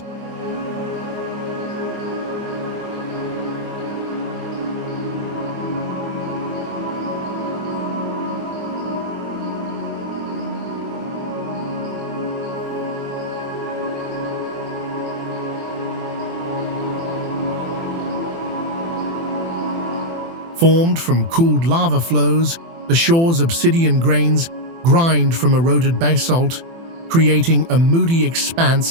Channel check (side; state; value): left; late; 24 ms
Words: Formed from cooled lava flows, the shore's obsidian grains grind from eroded basalt, creating a moody